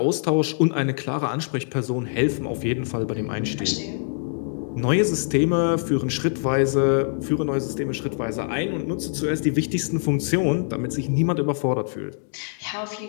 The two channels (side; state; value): right; silent; digital silence